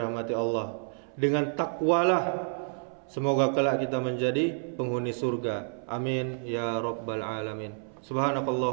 Allah? Dengan takwalah semoga kelak kita menjadi penghuni surga. Amin ya rabbal alamin.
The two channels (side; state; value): left; silent; 58 dB below the other